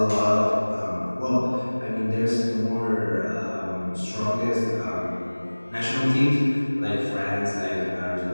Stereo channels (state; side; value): inverted; both; correlation -1.00